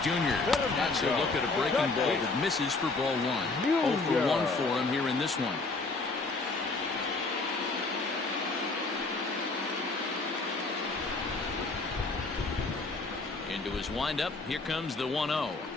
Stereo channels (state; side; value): quieter; right; 3.6 dB